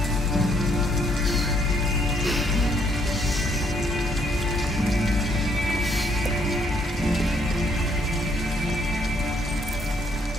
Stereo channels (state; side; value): normal; both; correlation 0.69